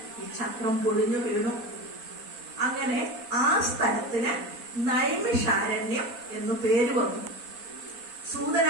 ഈ ചക്രം പൊടിഞ്ഞു വീണു. അങ്ങനെ ആ സ്ഥലത്തിന് നൈമിഷാരണ്യം എന്നു പേര് വന്നു. സൂതൻ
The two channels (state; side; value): late; left; 4.2 ms